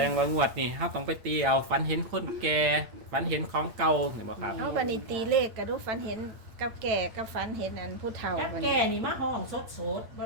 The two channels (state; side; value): late; left; 8.7 ms